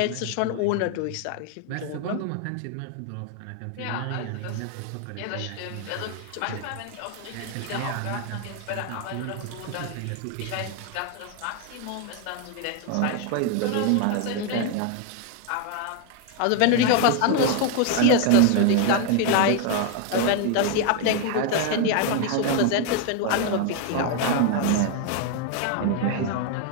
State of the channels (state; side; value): different; both; correlation 0.01